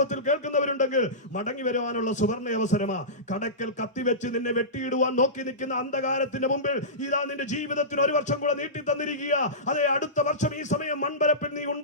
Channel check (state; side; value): normal; both; correlation -0.19